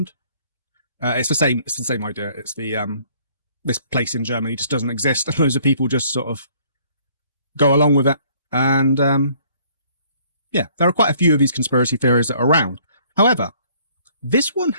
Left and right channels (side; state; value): both; inverted; correlation -0.60